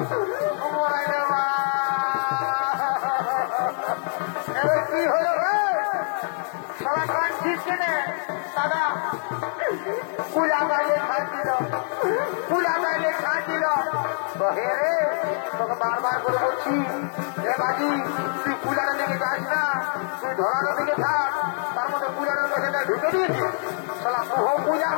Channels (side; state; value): right; silent; 62 dB below the other